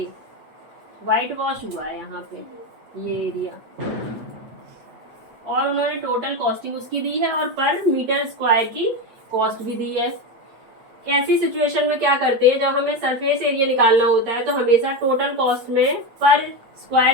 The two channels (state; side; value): late; left; 8.6 ms